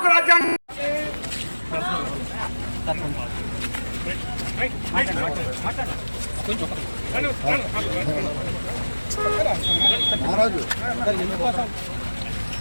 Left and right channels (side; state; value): both; inverted; correlation -1.00